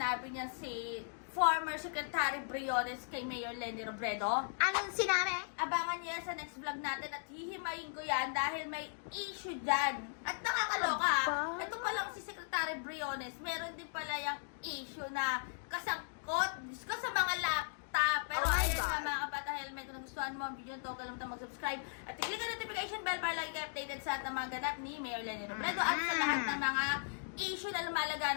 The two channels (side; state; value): right; silent; digital silence